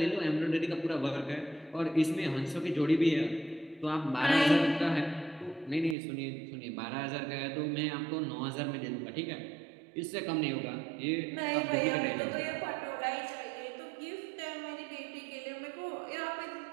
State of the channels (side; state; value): left; drops out; at 6.0 s